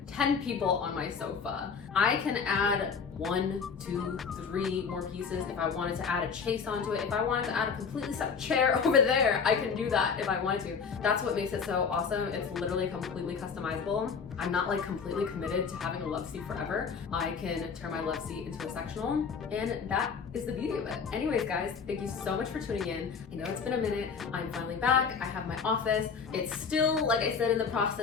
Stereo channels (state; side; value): quieter; right; 5.9 dB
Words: 10 people on my sofa, I can add 1, 2, 3 more pieces. If I wanted to add a chase onto it, if I wanted to add a completely separate chair over there, I can do that if I wanted to. That's what makes it so awesome. It's literally completely customizable. I'm not like completely committed to having a love seat forever. I can turn my love seat into a sectional, and that is the beauty of it. Anyways, guys, thank you so much for tuning in. I know it's been a minute. I'm finally back. I have my office. It's still, like I said, in the